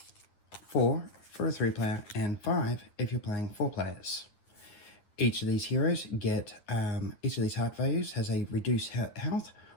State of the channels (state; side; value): late; right; 9.6 ms